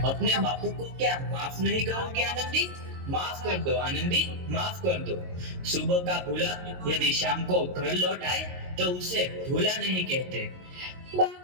अपने बापू को क्या माफ नहीं करोगे आनंदी? माफ कर दो आनंदी, माफ कर दो। सुबह का भूला यदि शाम को घर लौट आए तो उसे भूला नहीं कहते।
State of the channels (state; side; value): late; left; 22 ms